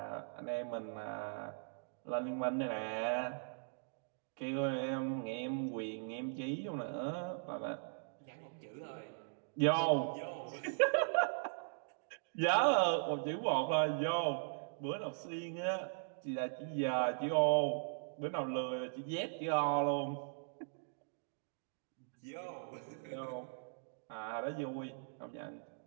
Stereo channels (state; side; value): silent; left; digital silence